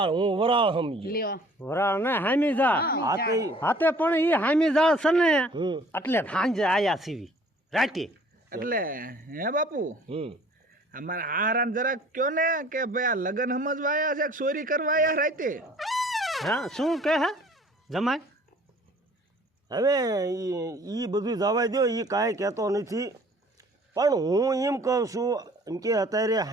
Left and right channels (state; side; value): normal; both; correlation 0.53